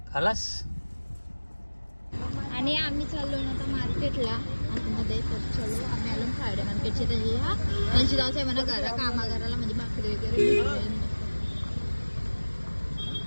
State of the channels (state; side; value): inverted; both; correlation -1.00